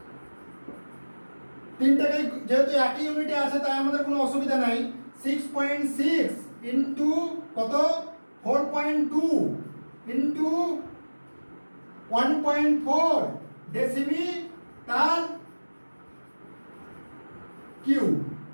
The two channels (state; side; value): inverted; both; correlation -1.00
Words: তিনটাকে যেহেতু একই ইউনিটে আছে তাই আমাদের কোনো অসুবিধা নাই। 6.6 ইন্টু কত 4.2 ইন্টু 1.4 ডেসিমি তার কিউ।